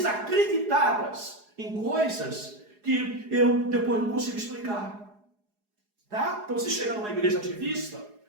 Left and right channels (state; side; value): late; left; 4.8 ms